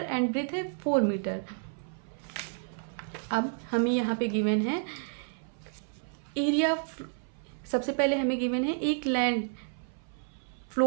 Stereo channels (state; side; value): silent; left; 55 dB below the other